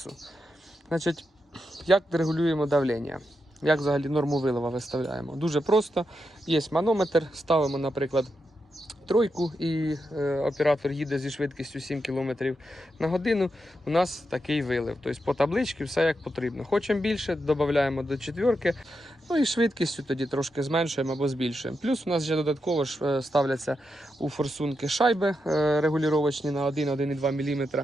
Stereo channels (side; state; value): both; normal; correlation 0.86